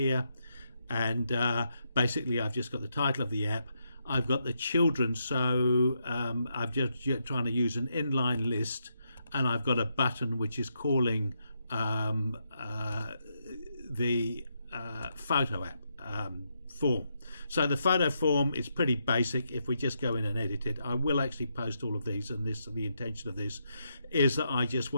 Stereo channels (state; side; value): inverted; both; correlation -0.81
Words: And basically I've just got the title of the app. I've got the children, so I'm just trying to use an inline list, and I've got a button which is calling the photo app form. So the photo form is pretty basic. If we just go in and edit it, I will actually post all of these, and the intention of this is that I just